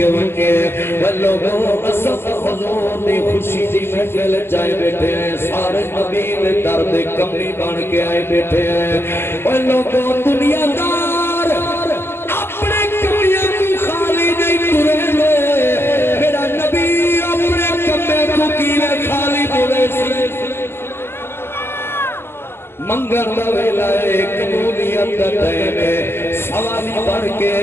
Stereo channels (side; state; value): right; late; 0.11 ms